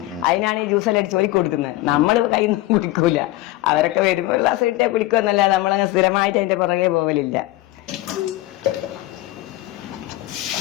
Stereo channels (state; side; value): quieter; right; 17.3 dB